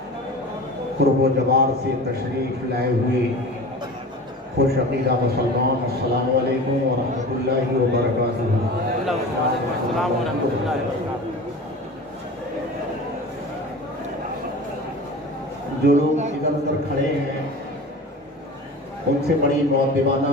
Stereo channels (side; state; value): both; normal; correlation 0.35